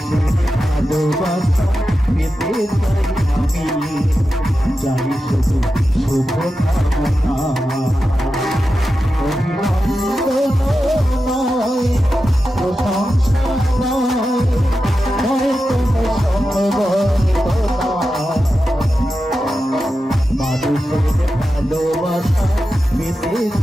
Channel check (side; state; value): both; normal; correlation 0.91